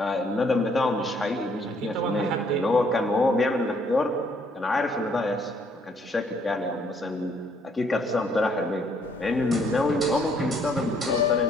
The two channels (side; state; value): both; normal; correlation 0.66